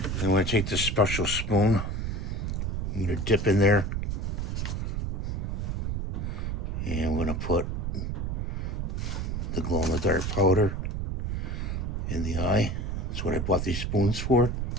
I'm going to take this special spoon. I'm going to dip in there. And I'm going to put the glow-in-the-dark powder in the eye. That's what I bought these spoons for.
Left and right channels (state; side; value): noise; right; rumble, 1 dB below the sound